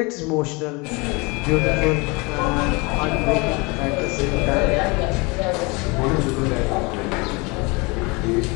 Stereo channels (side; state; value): right; quieter; 27.3 dB